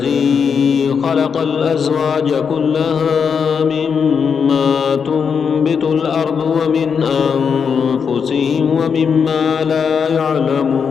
خلق الأزواج كلها مما تنبت الأرض ومن أنفسهم ومما لا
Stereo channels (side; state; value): right; quieter; 6.4 dB